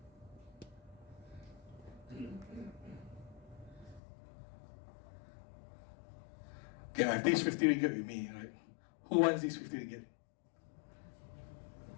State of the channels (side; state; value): right; drops out; at 4.0 s